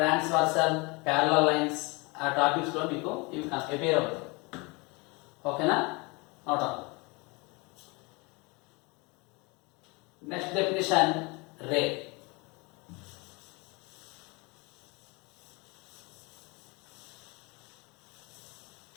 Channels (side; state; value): right; quieter; 27.3 dB